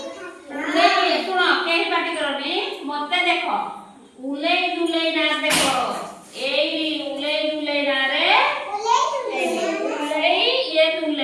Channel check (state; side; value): identical; both; correlation 1.00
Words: शुण कहीं पार्टी करनी मत देख उले दुले ना देख उले दुले ना रे उले ये